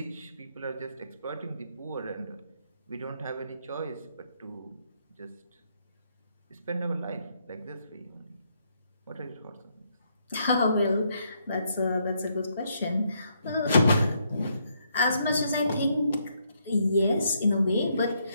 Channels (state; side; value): inverted; both; correlation -0.74